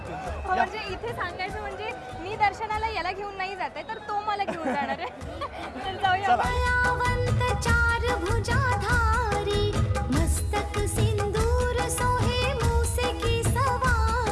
घेऊन जातो. म्हणजे इथे सांगायचं म्हणजे मी दर्शनाला याला घेऊन नाही जाते तर तो मला घेऊन जाणार आहे. तर जाऊया. कलावंत चार भुजाधारी मस्तक सिंदूर सोहे मूसे की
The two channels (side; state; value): both; identical; correlation 1.00